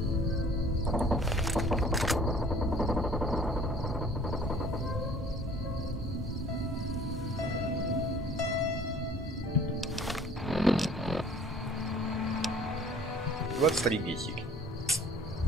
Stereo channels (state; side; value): normal; both; correlation 0.51